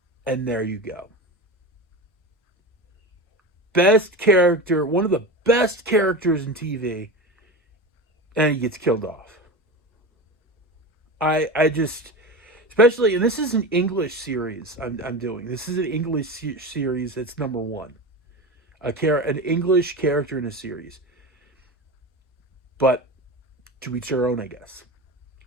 And there you go. Best character, one of the best characters in TV, and he gets killed off. I just, especially, and this is an English series I'm doing. This is an English series that's number one. An English character in a series. But to each their own, I guess.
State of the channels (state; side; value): normal; both; correlation 0.26